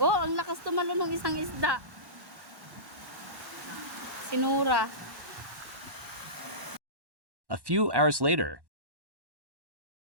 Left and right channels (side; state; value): left; late; 1.1 ms